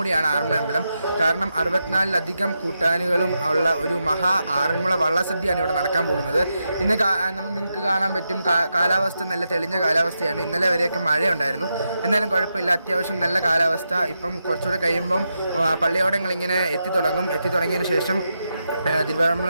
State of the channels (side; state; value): both; inverted; correlation -0.86